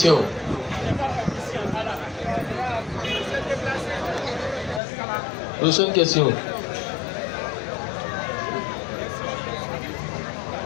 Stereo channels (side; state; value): right; drops out; at 4.8 s